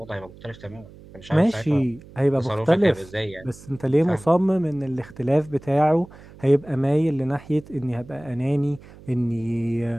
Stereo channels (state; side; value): noise; right; hum, 20 dB below the sound